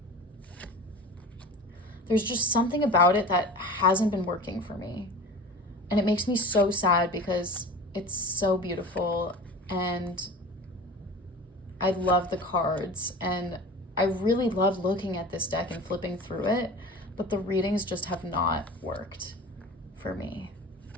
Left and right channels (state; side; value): normal; both; correlation 0.36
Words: There's just something about it that hasn't been working for me. And it makes me so sad because it's so beautiful and I love the cards and I really love looking at this deck and flipping through it, but the readings just have not worked for me.